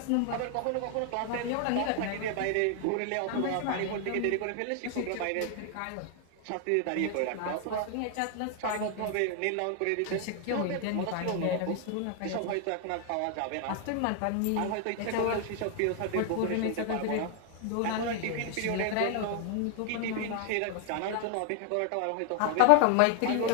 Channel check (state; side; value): different; both; correlation 0.00